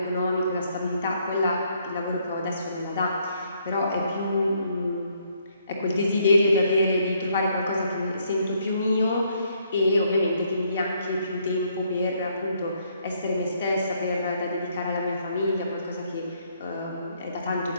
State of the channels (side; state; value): both; inverted; correlation -0.70